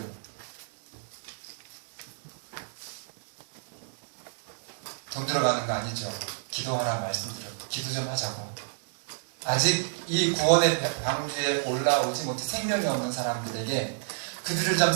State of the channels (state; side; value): silent; left; digital silence